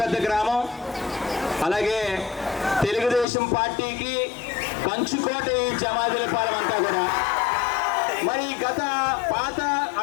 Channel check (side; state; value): right; drops out; at 3.2 s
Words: గ్రామం అలాగే తెలుగుదేశం పార్టీకి కంచుకోట ఈ జమాదిలపాలెం అంతా కూడా మరి గత పాత